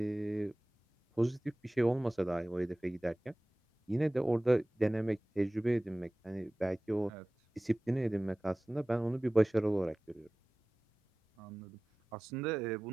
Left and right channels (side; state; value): both; normal; correlation 0.97